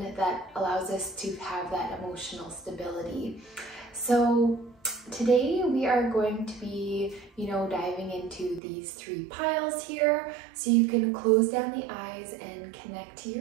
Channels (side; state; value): left; drops out; at 8.6 s